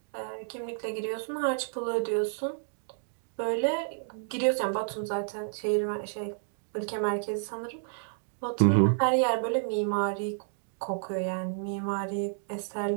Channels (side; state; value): left; silent; digital silence